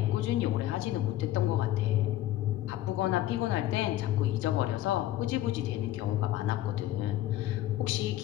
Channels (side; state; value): right; quieter; 14.3 dB